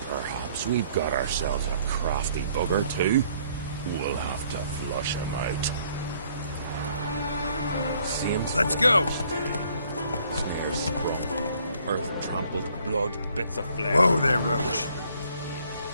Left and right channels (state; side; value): inverted; both; correlation -0.63